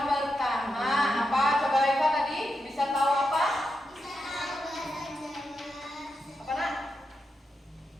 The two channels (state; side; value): normal; both; correlation 0.86